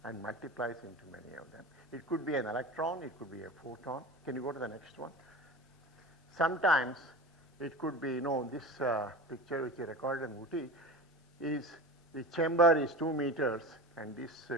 and multiplies into many of them. It could be an electron, it could be a photon. Can you go to the next one? Sometimes it could be, this picture which I recorded in Uti is the chamber is 2 meters, and this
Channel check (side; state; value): both; normal; correlation 0.31